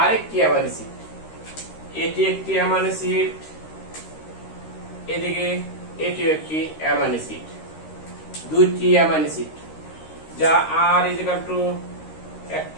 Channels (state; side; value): late; right; 13 ms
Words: আরেকটি অ্যামাইনো অ্যাসিড। এটি একটি অ্যামাইনো অ্যাসিড, এদিকে এটিও একটি অ্যামাইনো অ্যাসিড। দুইটি অ্যামাইনো অ্যাসিড যা আর ইকুয়াল টু